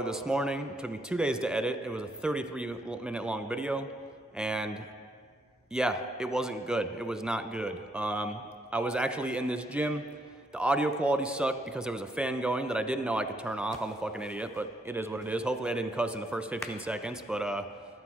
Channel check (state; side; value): normal; both; correlation 0.73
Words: it this morning. It took me 2 days to edit. It was a 33-minute long video, and yeah, it wasn't good. It was not good. I was actually in this gym. The audio quality sucked because there was a fan going that I didn't know I could turn off. I'm a fucking idiot, but it is what it is. Hopefully I didn't cuss in the first 15 seconds, but